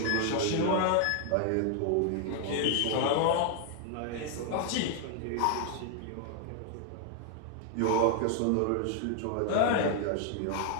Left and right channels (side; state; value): both; different; correlation 0.00